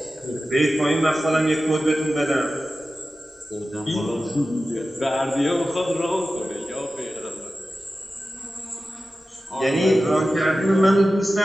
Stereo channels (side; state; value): both; normal; correlation 0.94